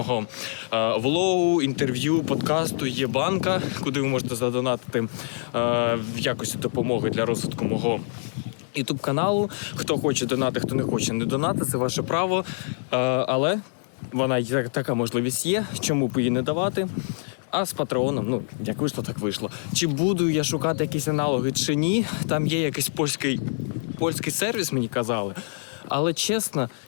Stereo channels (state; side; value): silent; right; digital silence